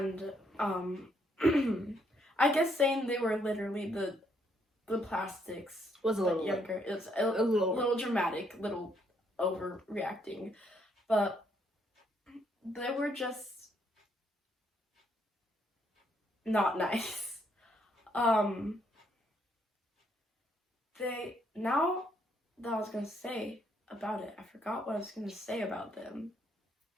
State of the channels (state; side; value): normal; both; correlation 0.72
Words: I guess saying they were literally the plastics Was a but little younger. It's a little dramatic, little overreacting, but they were just not nice. Now that I was gonna say about it, I forgot what I was gonna say about them.